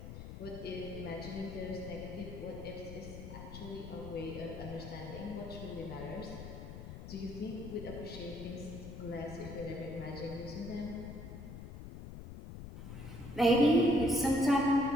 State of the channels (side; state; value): left; noise; rumble, 10 dB below the sound